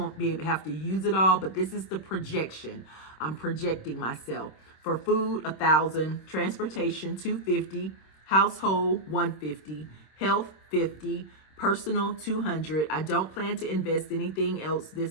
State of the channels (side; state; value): right; late; 26 ms